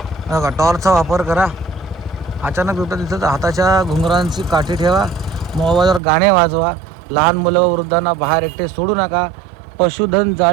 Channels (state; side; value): drops out; left; at 6.0 s